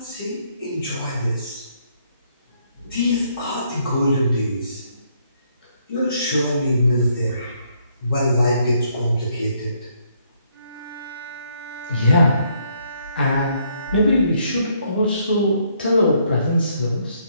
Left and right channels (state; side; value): inverted; both; correlation -0.71